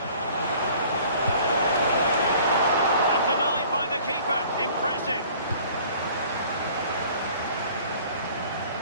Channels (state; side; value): inverted; both; correlation -0.51